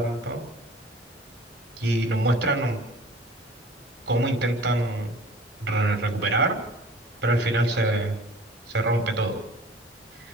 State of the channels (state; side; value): normal; both; correlation 0.46